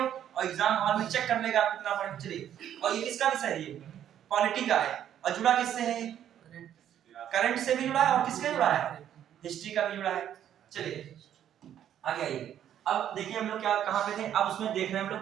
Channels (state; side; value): quieter; left; 10.4 dB